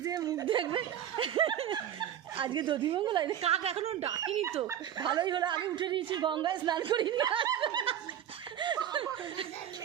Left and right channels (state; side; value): quieter; left; 10.4 dB